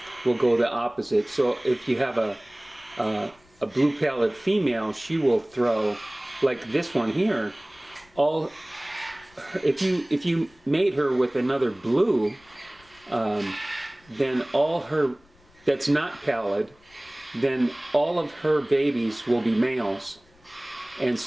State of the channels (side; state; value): left; noise; rumble, 30 dB below the sound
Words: will go the opposite. So if you have a blue pallid female, she will throw, like this one here, if you mate her with another blue, then all her, that's not pallid, then all of her babies will be males. And